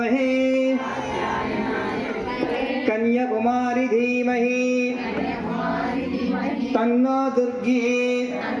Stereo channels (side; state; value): both; identical; correlation 1.00